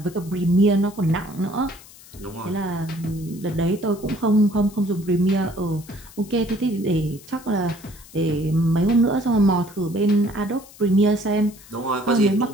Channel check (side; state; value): left; noise; hiss, 21 dB below the sound